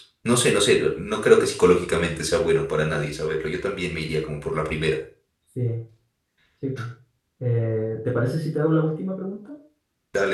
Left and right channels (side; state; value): both; identical; correlation 1.00